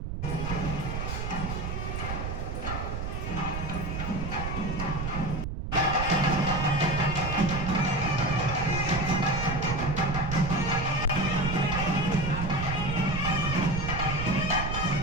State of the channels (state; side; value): noise; right; rumble, 4 dB below the sound